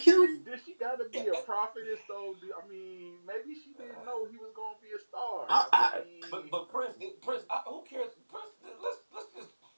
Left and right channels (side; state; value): both; inverted; correlation -1.00